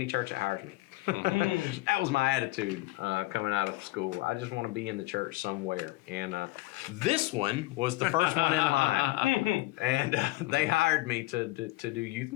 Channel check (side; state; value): right; quieter; 19.6 dB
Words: church that hires me. That was my attitude coming out of school. I just want to be in the church somewhere. And this one was the first one in line. And they hired me to do youth